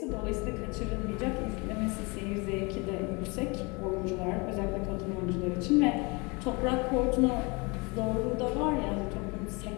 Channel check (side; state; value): right; quieter; 28.3 dB